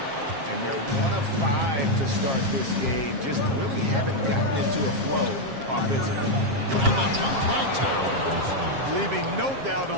And they're 1 of 5 to start this game. Just really haven't gotten into a flow offensively. And the dunk by Towns. Leaving no doubt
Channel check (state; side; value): late; left; 7.4 ms